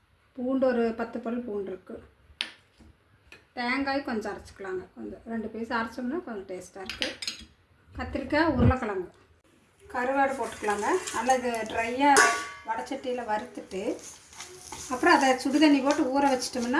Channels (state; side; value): identical; both; correlation 1.00